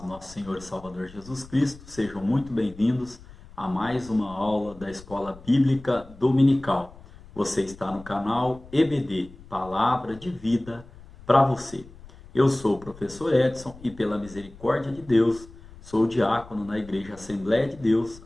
nosso Senhor e Salvador Jesus Cristo. Sejam muito bem-vindos a mais uma aula da Escola Bíblica Dominical. Você está no canal EBD, Palavra de Vida para você. Eu sou o professor Edson e pela misericórdia de Deus, sou diácono na Igreja Assembleia de Deus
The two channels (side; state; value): left; noise; rumble, 20 dB below the sound